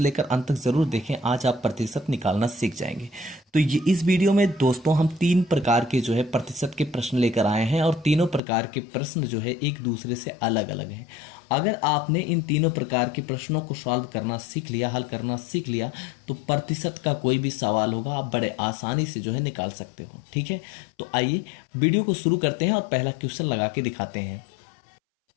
लेकर अंत तक जरूर देखें। आज आप प्रतिशत निकालना सीख जाएंगे। तो ये इस वीडियो में दोस्तों हम तीन प्रकार के जो है प्रतिशत के प्रश्न लेकर आए हैं और तीनों प्रकार के प्रश्न जो है एक दूसरे से अलग अलग हैं। अगर आपने इन तीनों प्रकार के प्रश्नों को सॉल्व करना सीख लिया, हल करना सीख लिया, तो प्रतिशत का कोई भी सवाल होगा आप बड़े आसानी से जो है निकाल सकते हो। ठीक है, तो आइए वीडियो को शुरू करते हैं और पहला क्वेश्चन लगा के दिखाते हैं।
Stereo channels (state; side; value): drops out; right; at 8.4 s